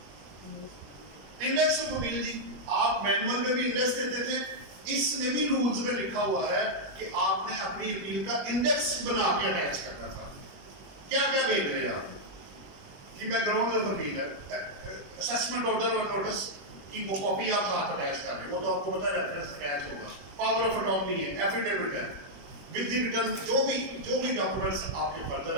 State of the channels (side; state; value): left; late; 21 ms